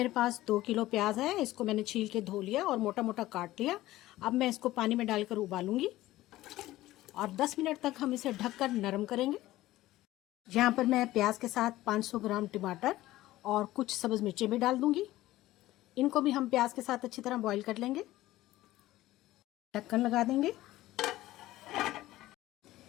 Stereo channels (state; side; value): quieter; right; 16.2 dB